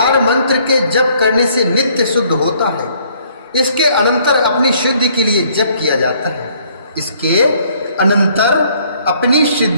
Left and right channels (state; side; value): inverted; both; correlation -0.63